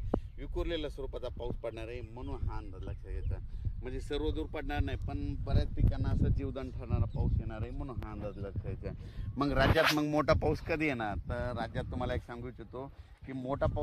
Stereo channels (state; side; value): identical; both; correlation 1.00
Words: विखुरलेल्या स्वरूपाचा पाऊस पडणार आहे, म्हणून हा अंदाज लक्षात घ्यायचा। म्हणजे सर्व दूर पडणार नाही, पण बऱ्याच पिकांना असं जीवदान ठरणारा पाऊस येणार आहे, म्हणून हा अंदाज लक्षात घ्यायचा। मग राज्यात मोठा पाऊस कधी येणार, तर राज्यात तुम्हाला एक सांगू इच्छितो की मोठा